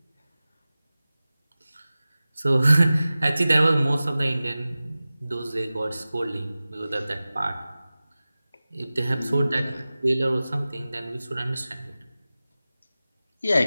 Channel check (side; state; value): both; inverted; correlation -0.97